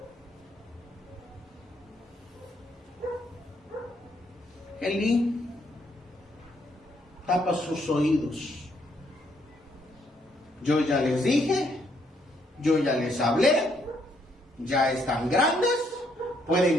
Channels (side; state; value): both; normal; correlation 0.72